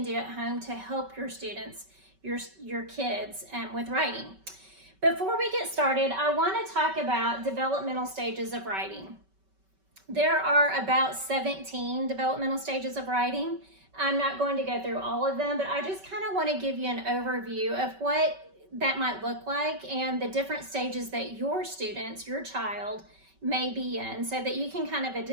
do at home to help your students, your kids with writing. Before we get started, I want to talk about developmental stages of writing. There are about 17 developmental stages of writing. I'm not going to go through all of them, but I just kind of want to give you an overview of what that might look like and the different stages that your students, your child, may be in so that you can kind of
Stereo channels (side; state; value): left; late; 5.2 ms